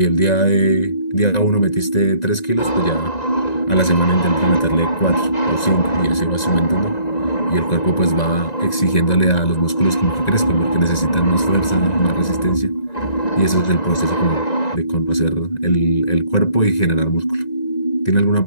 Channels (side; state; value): right; late; 1.9 ms